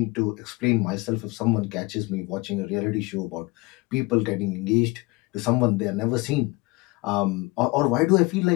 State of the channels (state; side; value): quieter; right; 24.0 dB